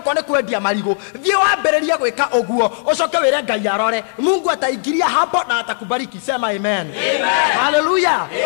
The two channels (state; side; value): silent; right; digital silence